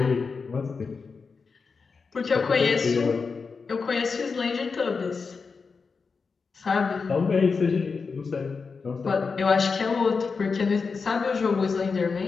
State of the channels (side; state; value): right; quieter; 4.9 dB